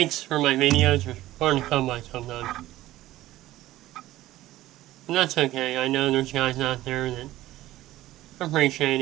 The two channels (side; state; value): left; quieter; 15.6 dB